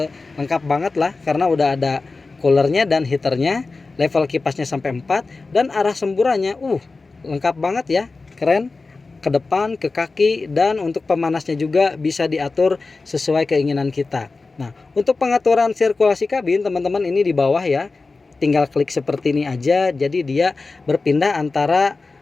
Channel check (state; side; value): quieter; right; 3.8 dB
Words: lengkap banget lah, karena udah ada coolernya dan heaternya, level kipasnya sampai 4, dan arah semburannya lengkap banget ya, keren. Ke depan, ke kaki, dan untuk pemanasnya juga bisa diatur sesuai keinginan kita. Nah, untuk pengaturan sirkulasi kabin teman-teman ini di bawah ya, tinggal klik seperti ini aja, jadi dia berpindah antara